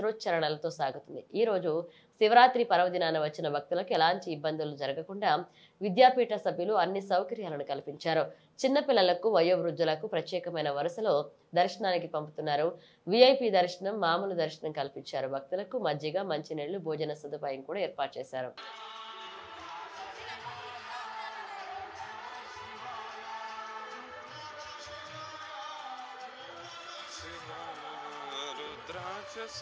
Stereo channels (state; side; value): identical; both; correlation 1.00